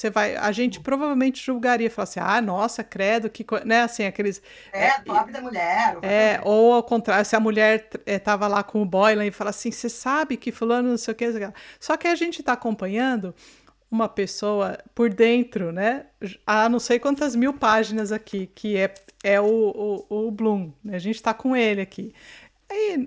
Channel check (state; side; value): identical; both; correlation 1.00